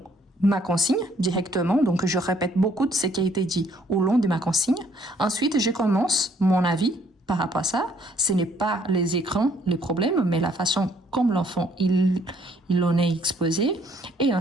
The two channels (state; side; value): normal; both; correlation 0.65